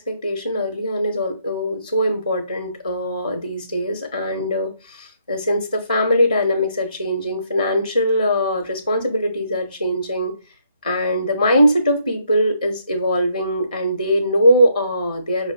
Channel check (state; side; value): inverted; both; correlation -0.72